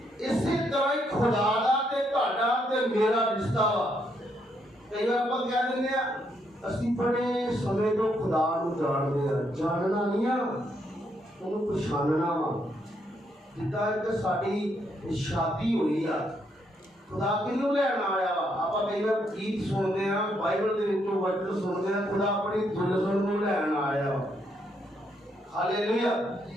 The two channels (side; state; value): both; normal; correlation 0.75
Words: इसी तरह ही खुदा दा ते तुहाडा ते मेरा रिश्ता वा। कई बार आपां कह दिंदे आ ਅਸੀਂ बड़े समय तो खुदा ਨੂੰ ਜਾਣਦੇ ਆ। ਜਾਣਨਾ ਨਹੀਂ ਆ, ਉਹਨੂੰ ਪਛਾਣਨਾ ਵਾ। ਜਿੱਦਾਂ ਇੱਕ ਸਾਡੀ ਸ਼ਾਦੀ ਹੋਈ ਆ खुदा किनू लैन आया वा? आपां कई बार गीत सुनते हैं, बाइबल के विचों वचन सुनते हैं, खुदा अपनी दुल्हन नूं लैन आया वा। हालेलुया।